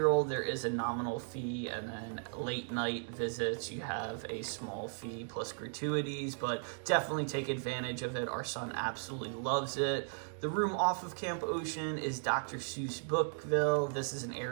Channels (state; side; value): silent; left; digital silence